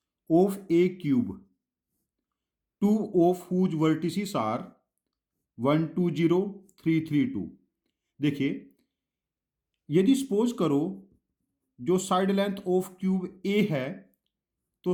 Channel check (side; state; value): both; identical; correlation 1.00